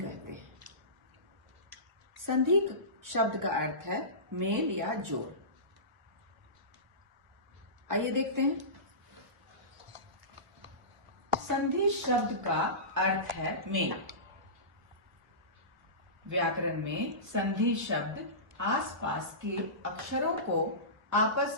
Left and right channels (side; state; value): left; late; 1.3 ms